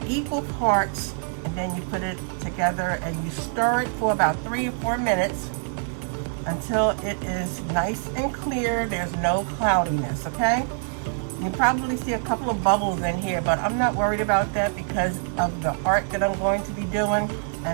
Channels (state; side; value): silent; left; 62 dB below the other